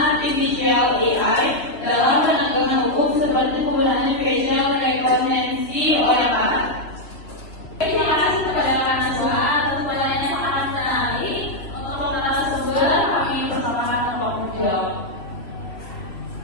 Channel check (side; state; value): right; late; 3.0 ms